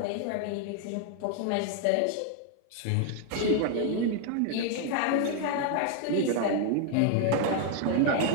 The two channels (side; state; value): both; different; correlation 0.00